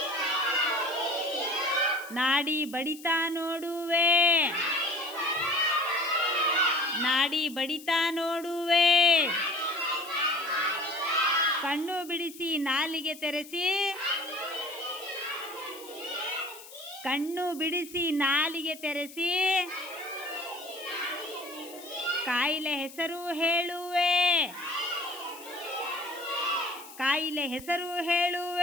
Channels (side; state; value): left; noise; hiss, 17 dB below the sound